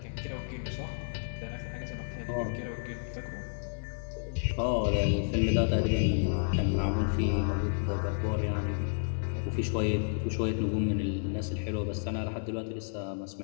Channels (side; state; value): right; silent; 57 dB below the other